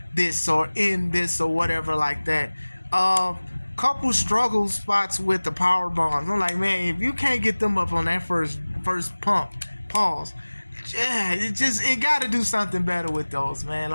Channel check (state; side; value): inverted; both; correlation -1.00